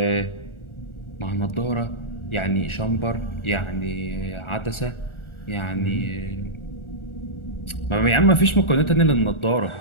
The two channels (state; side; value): late; right; 1.4 ms